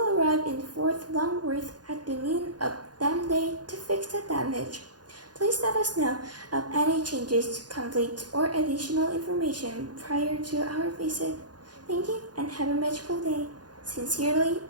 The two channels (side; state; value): left; late; 0.69 ms